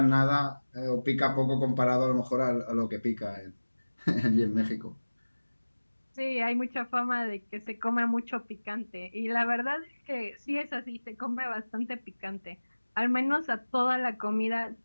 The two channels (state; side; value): inverted; both; correlation -1.00